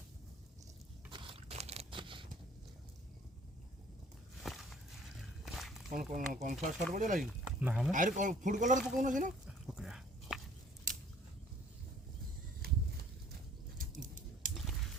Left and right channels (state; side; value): normal; both; correlation 0.54